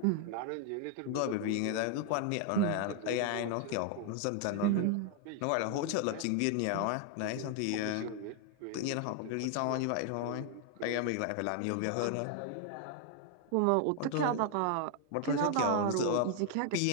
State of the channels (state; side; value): different; both; correlation 0.00